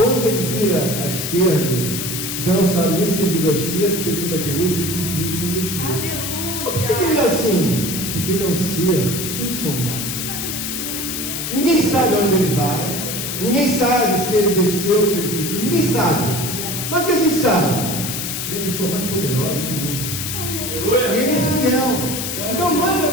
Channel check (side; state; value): left; noise; hiss, 4 dB below the sound